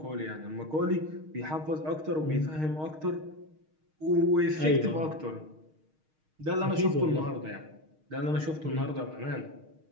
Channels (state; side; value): late; left; 6.4 ms